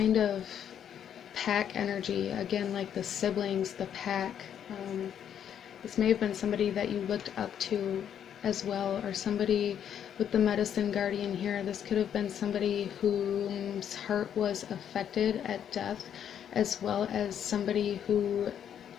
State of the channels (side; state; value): right; quieter; 9.1 dB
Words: of pack energy, again, like the siblings, the pack. This may have been somebody that you looked up to as well, or somebody with the medicine guardian here. This could have been somebody whose heart was affected at death, as well as somebody who